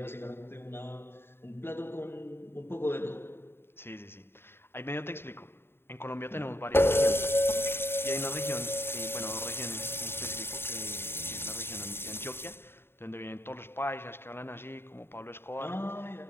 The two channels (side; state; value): right; late; 0.11 ms